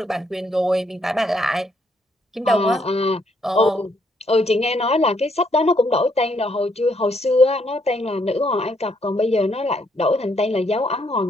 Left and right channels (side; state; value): both; normal; correlation 0.72